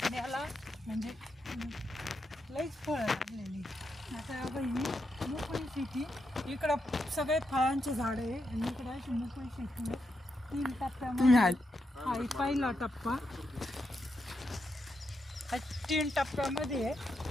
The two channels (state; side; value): normal; both; correlation 0.83